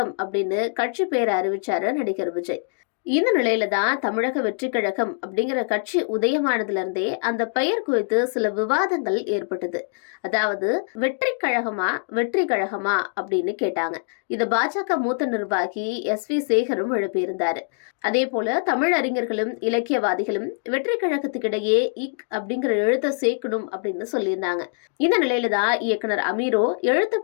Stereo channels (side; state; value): right; silent; digital silence